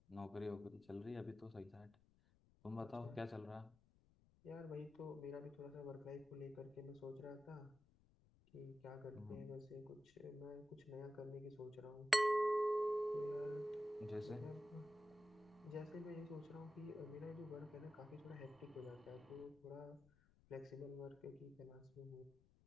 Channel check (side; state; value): left; noise; rumble, 27 dB below the sound